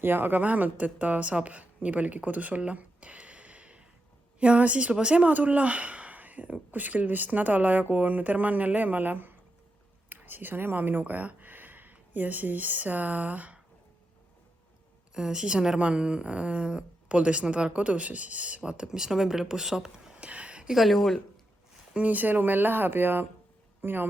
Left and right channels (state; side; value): normal; both; correlation 0.86